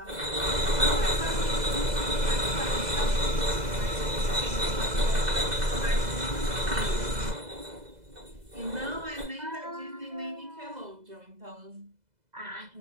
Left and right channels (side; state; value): left; late; 2.0 ms